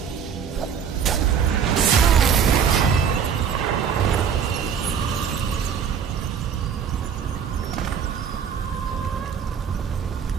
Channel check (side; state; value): left; quieter; 7.4 dB